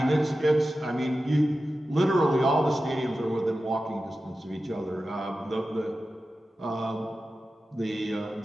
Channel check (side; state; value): both; normal; correlation 0.93